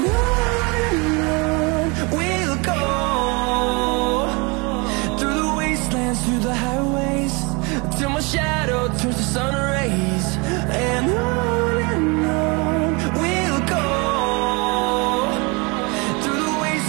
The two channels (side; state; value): left; quieter; 29.0 dB